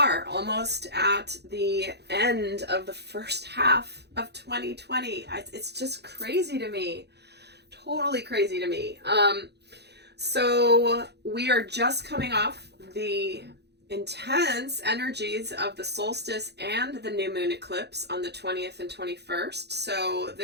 almost at the end of the first half of 2020. It's just crazy to me. Totally crazy to me. So we are just coming off the intense energies of the solstice and the new moon eclipse on the 20th and 21st. So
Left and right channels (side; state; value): left; late; 0.49 ms